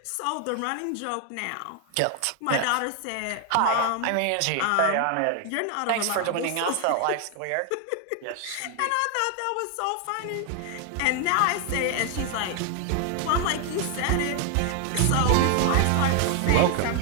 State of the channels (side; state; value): both; different; correlation 0.00